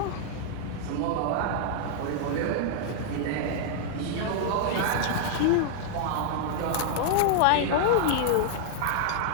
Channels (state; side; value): different; both; correlation -0.01